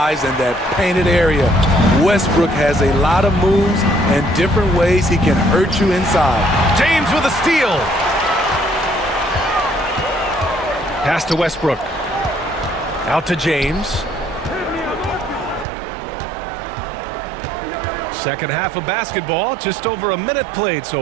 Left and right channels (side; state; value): left; drops out; at 15.7 s